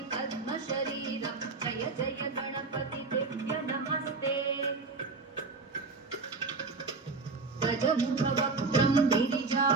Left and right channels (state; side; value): quieter; left; 4.0 dB